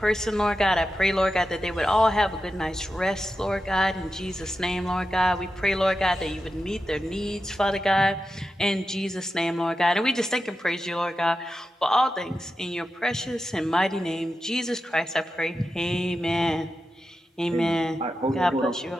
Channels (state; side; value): normal; both; correlation 0.90